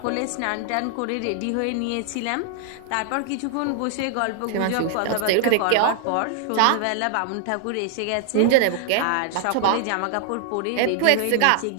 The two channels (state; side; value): different; both; correlation 0.00